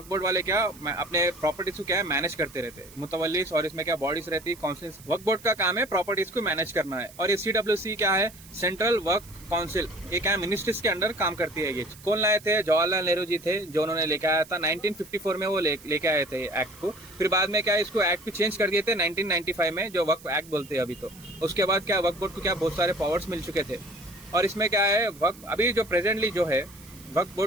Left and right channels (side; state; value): right; noise; hiss, 21 dB below the sound